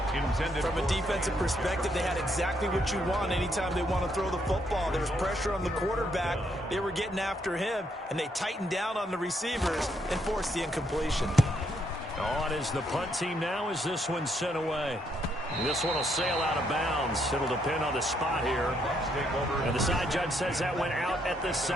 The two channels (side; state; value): both; normal; correlation 0.74